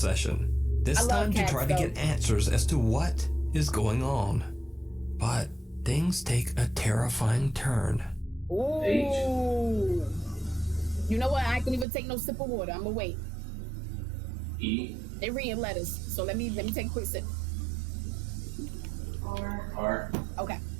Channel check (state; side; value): drops out; left; at 11.9 s